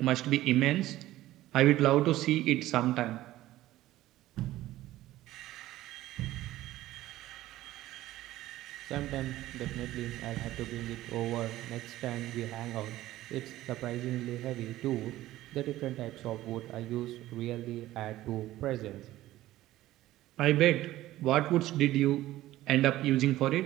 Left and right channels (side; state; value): left; quieter; 15.4 dB